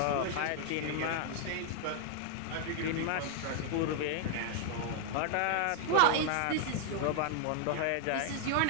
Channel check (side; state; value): both; different; correlation 0.00